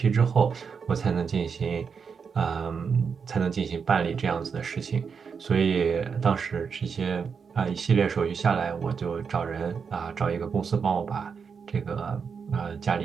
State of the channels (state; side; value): quieter; left; 6.0 dB